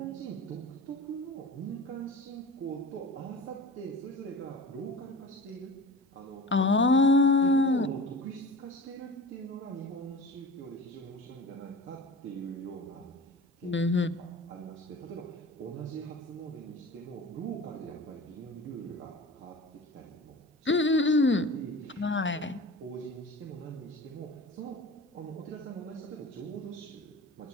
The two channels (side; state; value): both; normal; correlation 0.37